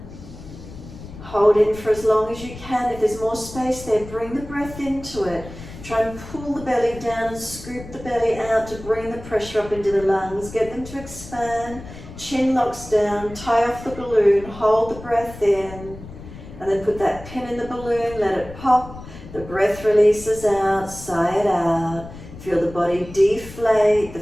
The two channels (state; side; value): noise; left; rumble, 15 dB below the sound